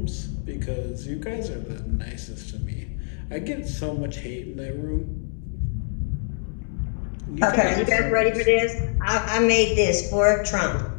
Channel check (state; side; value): silent; right; digital silence